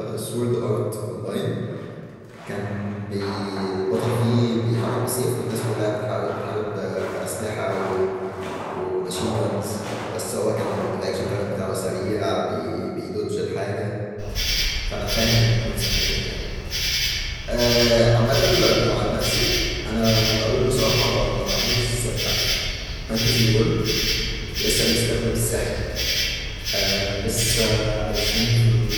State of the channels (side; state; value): both; identical; correlation 1.00